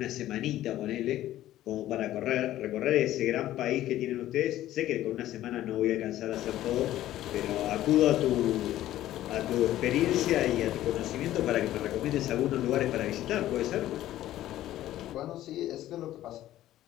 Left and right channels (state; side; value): quieter; right; 13.8 dB